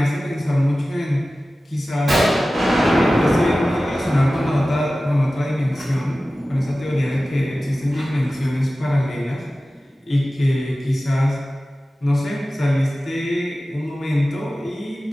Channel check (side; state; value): both; normal; correlation 0.96